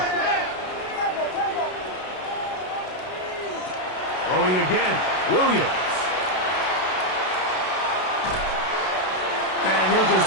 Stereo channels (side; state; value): right; late; 32 ms